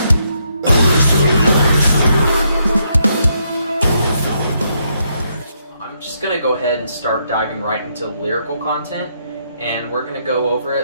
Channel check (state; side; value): inverted; both; correlation -0.76